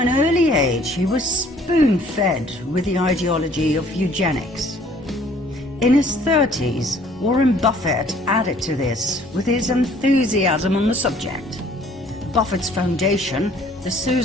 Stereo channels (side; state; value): both; normal; correlation 0.57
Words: early age, he was spoon-fed with the ideology of eugenics. In his 30s, Warren Buffett added to this with his enthusiasm on the subject. Buffett's foundation, the